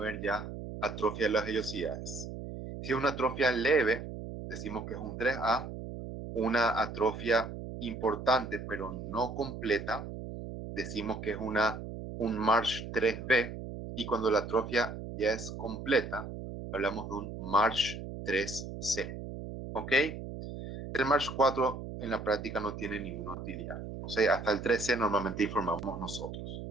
ya atrofia de las vellosidades. Si es una atrofia leve, decimos que es un 3A, una atrofia importante pero no completa, decimos que es un Marsh 3B, y cuando la atrofia ya es completa, hablamos de un Marsh 3C. ¿Ok? El Marsh 4 en la práctica no tiene ninguna utilidad. O sea, hasta el 13 normalmente informamos nosotros,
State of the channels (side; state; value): right; noise; hum, 9 dB below the sound